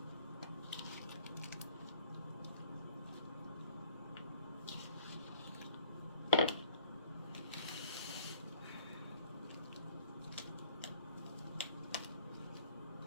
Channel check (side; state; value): both; inverted; correlation -0.56